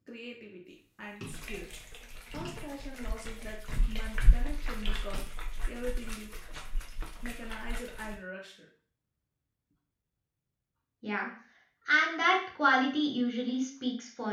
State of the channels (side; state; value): both; identical; correlation 1.00